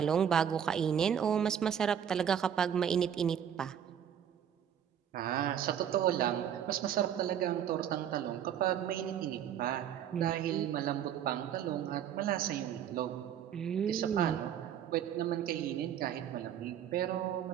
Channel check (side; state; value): left; quieter; 9.2 dB